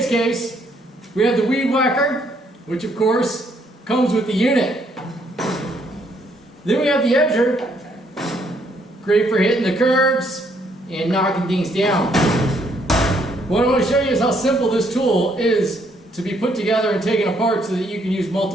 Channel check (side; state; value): both; normal; correlation 0.70